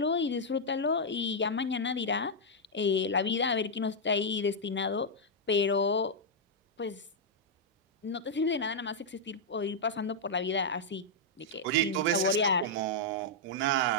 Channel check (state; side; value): normal; both; correlation -0.05